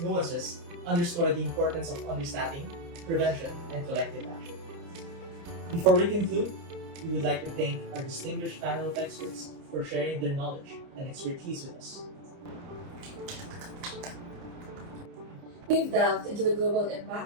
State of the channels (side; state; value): left; late; 30 ms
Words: nuances underscore the importance of understanding, prevention, and collective action. Before we conclude, we would like to thank our distinguished panel of experts for sharing their knowledge and expertise with us. We've delved into the global